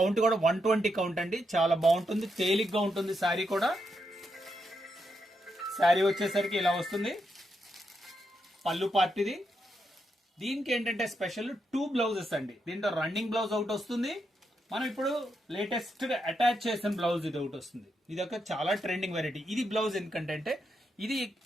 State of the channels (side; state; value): both; normal; correlation 0.82